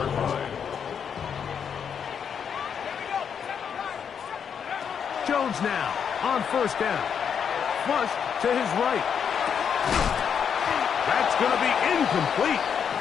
line. Jones now on 1st down. Flush to his right. That's going to be incomplete.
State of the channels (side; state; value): right; quieter; 7.4 dB